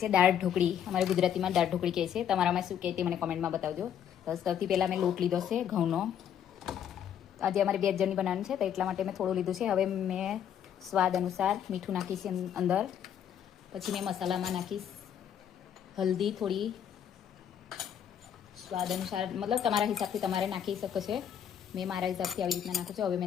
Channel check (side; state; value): right; quieter; 9.3 dB